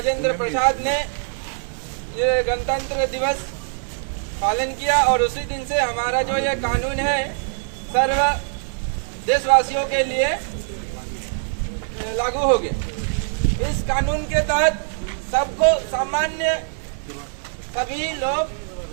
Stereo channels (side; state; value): left; silent; digital silence